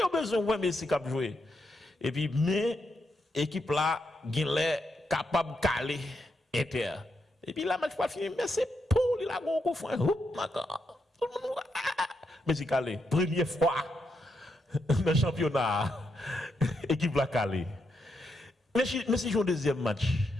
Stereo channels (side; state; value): both; normal; correlation 0.82